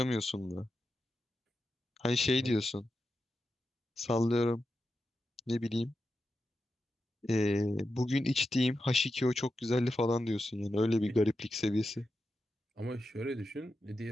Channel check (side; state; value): both; normal; correlation 0.89